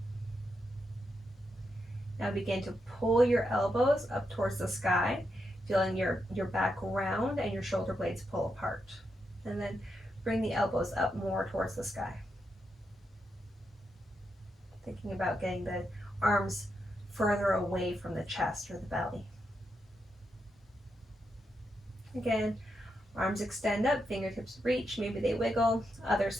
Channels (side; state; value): both; normal; correlation 0.84